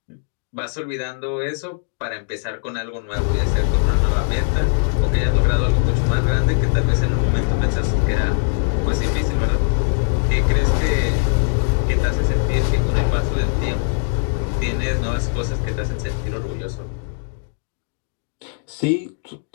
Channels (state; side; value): silent; right; digital silence